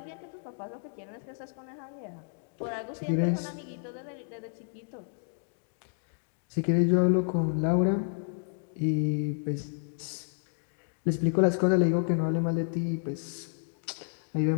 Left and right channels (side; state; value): right; silent; digital silence